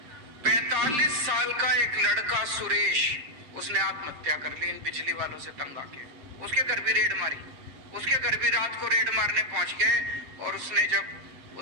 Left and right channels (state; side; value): late; left; 7.5 ms